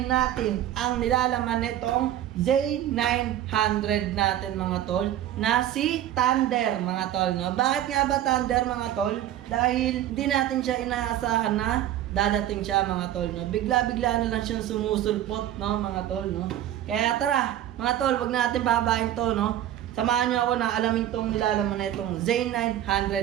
natin ang nilalaman nitong Z900 natin mga tol, na si Thunder mga tol, no? Bakit nga ba Thunder mga tol? Dahil hindi natin siya inaasahan na dadating siya mga tol, no? Bigla-bigla na lang siyang sumusulpot, no mga tol, no? Kaya tara mga tol, wag natin babahin to, no? Samahan niyo ako na alamin tong nilalaman na itong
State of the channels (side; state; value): left; quieter; 12.1 dB